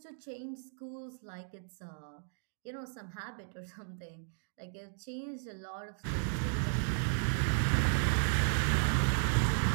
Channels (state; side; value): silent; left; digital silence